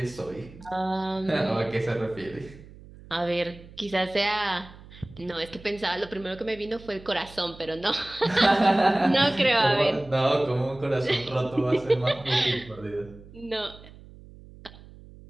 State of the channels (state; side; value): noise; right; hum, 20 dB below the sound